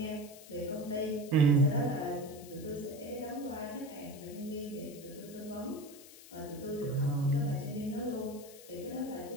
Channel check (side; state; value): left; noise; hiss, 18 dB below the sound